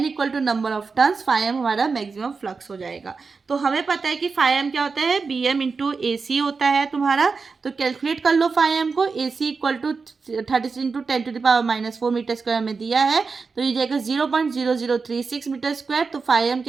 equal to number of turns, φm हमारा मैक्सिमम फ्लक्स हो जाएगा। तो हमें पता है कि φm क्या होता है, BM इंटू AC होता है तुम्हारा। तो कैलकुलेट कर लो φm को, AC equal to 36 into 10⁻⁻4 metre square में दिया है, तो ये जाएगा 0.0036 मीटर स्क्वायर। तो φm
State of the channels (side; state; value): left; quieter; 4.7 dB